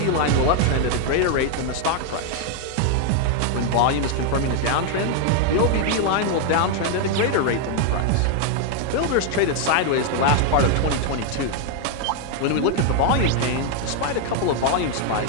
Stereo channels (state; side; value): different; both; correlation 0.00